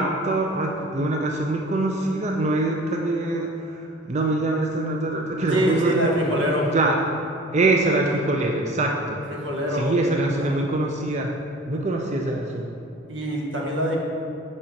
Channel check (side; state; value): both; normal; correlation 0.43